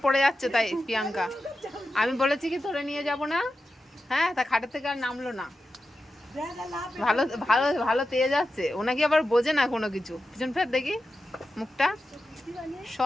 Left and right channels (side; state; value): both; normal; correlation 0.91